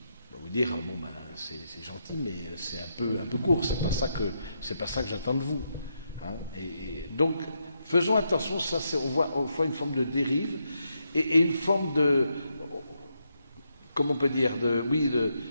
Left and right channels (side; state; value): both; inverted; correlation -0.81